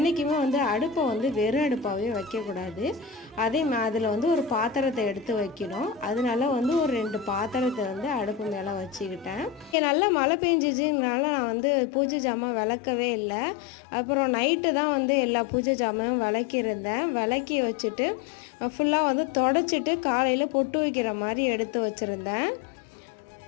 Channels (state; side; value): drops out; right; at 9.8 s